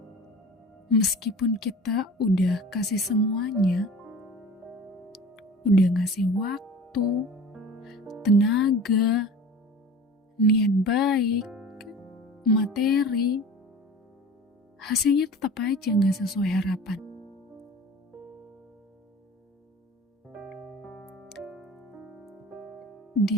meskipun kita udah kasih semuanya, udah ngasih waktu, tenaga, niat baik, materi, hasilnya tetap aja gak sesuai harapan.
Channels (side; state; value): both; normal; correlation 0.40